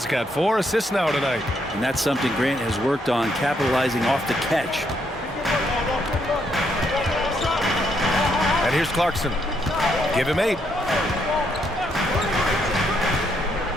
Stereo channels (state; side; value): normal; both; correlation 0.75